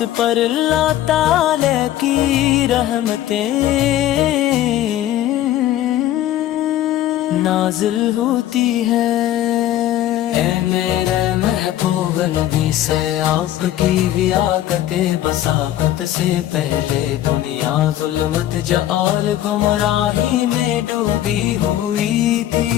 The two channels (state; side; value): quieter; right; 13.0 dB